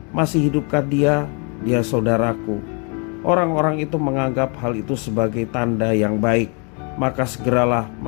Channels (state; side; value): quieter; right; 35.9 dB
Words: masih hidupkah dia? Dia saudaraku. Orang-orang itu menganggap hal itu sebagai tanda yang baik. Maka segeralah